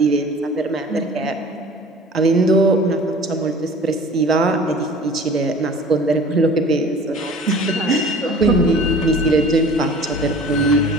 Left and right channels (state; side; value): normal; both; correlation 0.44